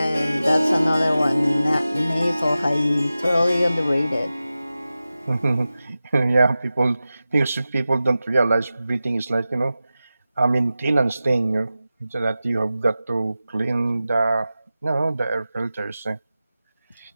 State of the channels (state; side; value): inverted; both; correlation -0.94